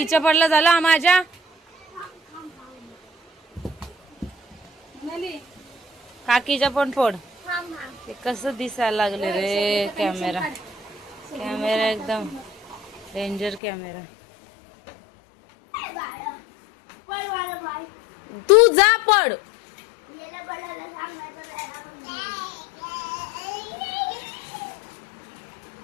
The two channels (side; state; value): right; drops out; at 13.6 s